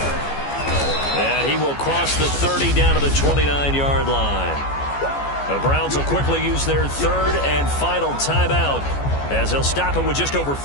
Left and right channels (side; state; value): right; late; 14 ms